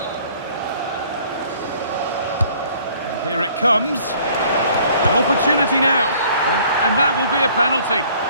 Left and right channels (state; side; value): inverted; both; correlation -0.57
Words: And here it comes. An opportunity now. And that will be a penalty.